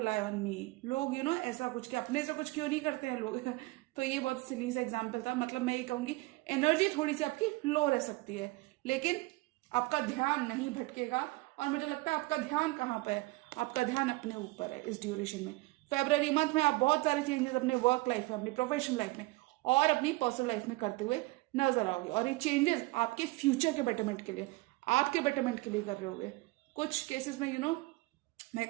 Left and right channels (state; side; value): quieter; left; 22.0 dB